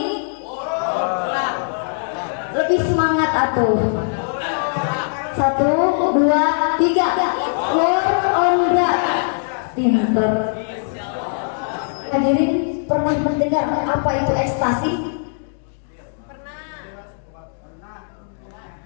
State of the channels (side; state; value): right; silent; digital silence